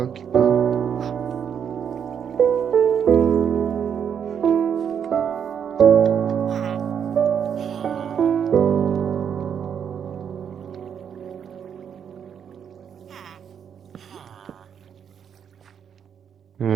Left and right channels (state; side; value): quieter; left; 8.0 dB